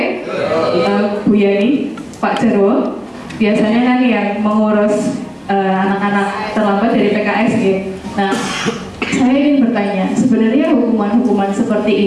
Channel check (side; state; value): both; identical; correlation 1.00